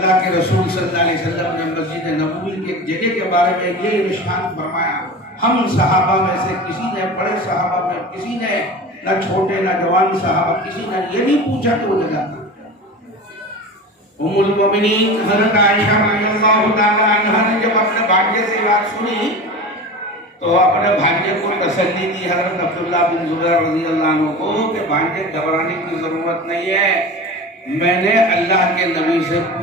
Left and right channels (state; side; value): normal; both; correlation 0.31